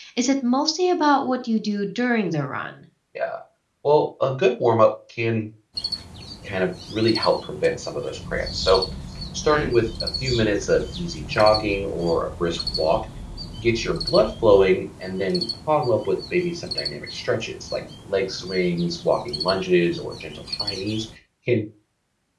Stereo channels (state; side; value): identical; both; correlation 1.00